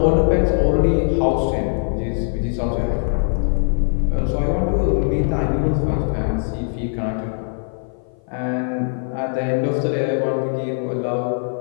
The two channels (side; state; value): right; silent; 56 dB below the other